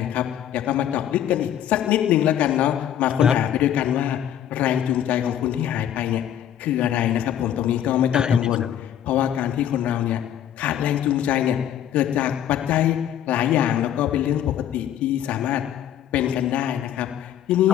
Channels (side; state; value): right; quieter; 10.5 dB